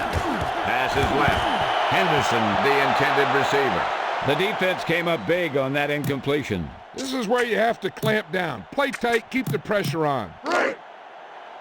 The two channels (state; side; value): identical; both; correlation 1.00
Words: Pass is left. Henderson, the intended receiver. The defense came up big on that incompletion. This is where you have to clamp down. Play tight, keep the pressure on.